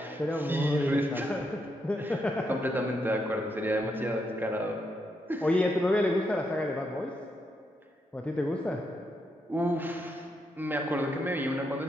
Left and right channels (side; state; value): both; normal; correlation 0.80